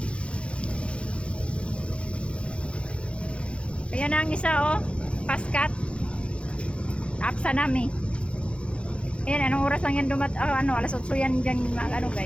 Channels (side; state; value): right; late; 0.059 ms